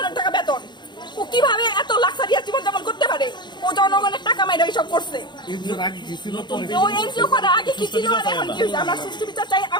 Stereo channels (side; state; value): right; late; 0.22 ms